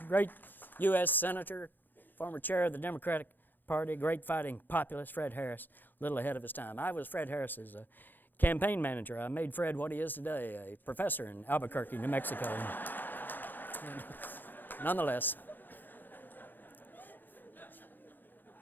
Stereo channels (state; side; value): late; right; 0.090 ms